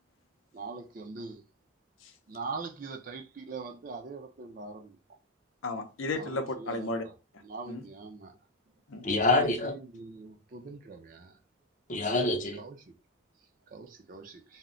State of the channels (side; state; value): both; normal; correlation 0.01